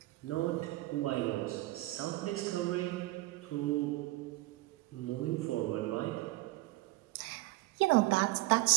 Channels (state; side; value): quieter; left; 19.4 dB